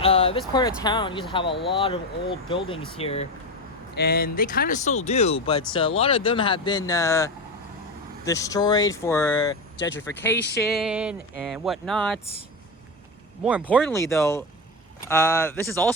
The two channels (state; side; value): normal; both; correlation 0.17